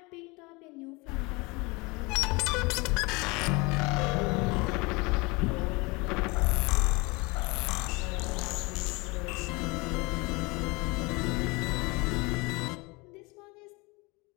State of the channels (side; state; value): right; quieter; 26.1 dB